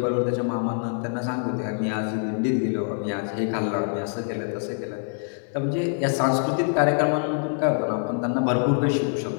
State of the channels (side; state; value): right; silent; 62 dB below the other